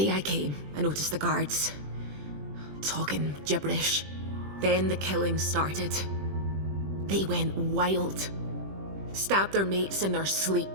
I came, I noticed the guards talking gibberish. Then the killing started. They went wild. Stabbed their mates in their sleep.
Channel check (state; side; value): late; left; 20 ms